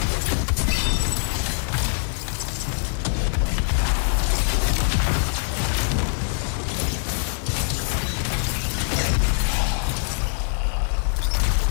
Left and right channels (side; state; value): right; silent; digital silence